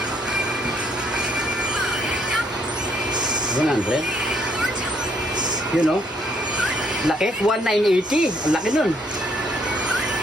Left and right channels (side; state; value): both; normal; correlation 0.69